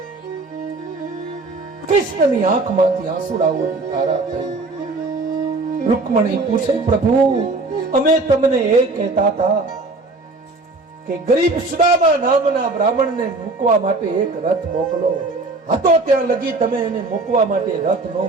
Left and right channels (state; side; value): quieter; left; 3.3 dB